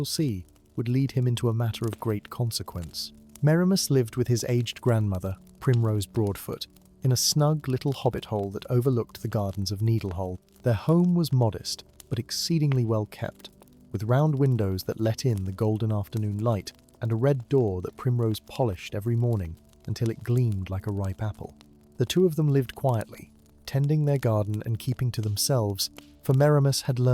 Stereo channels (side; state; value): both; identical; correlation 1.00